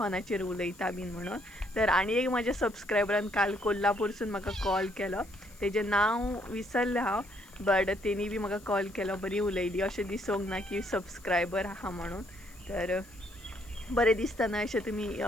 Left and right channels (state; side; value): noise; left; hiss, 24 dB below the sound